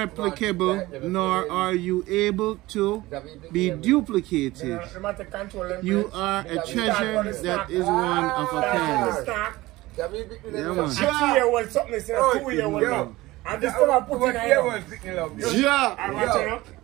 nor are you able to be duplicated. You are a treasure that is one of a kind. Yeah, man. 2-year-old something, 2-year-old. And this time I put in a yeah. I watch it.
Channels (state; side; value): quieter; left; 18.9 dB